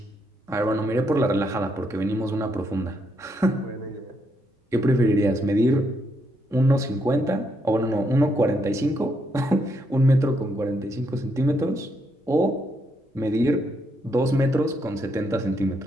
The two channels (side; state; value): both; normal; correlation 0.77